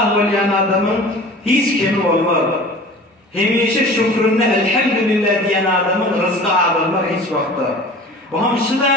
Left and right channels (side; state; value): both; normal; correlation 0.41